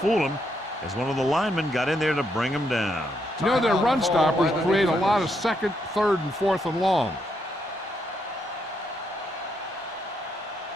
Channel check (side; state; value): both; normal; correlation 0.77